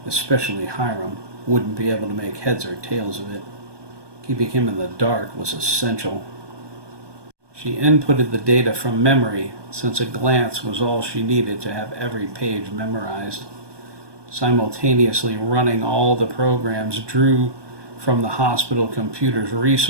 especially Hiram, wouldn't be able to make heads or tails of it. Keeping him in the dark was essential. She inputted the data from memory, since a glance was all she needed to have every page memorized. Simultaneously running all the programs drew from the hospital computer's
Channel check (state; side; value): late; left; 1.2 ms